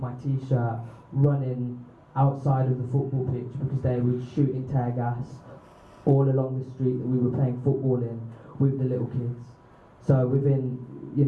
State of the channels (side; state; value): both; identical; correlation 1.00